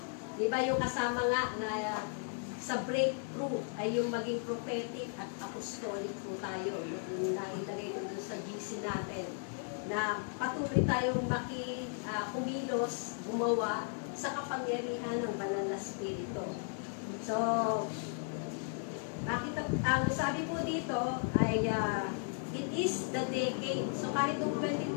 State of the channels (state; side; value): silent; right; 54 dB below the other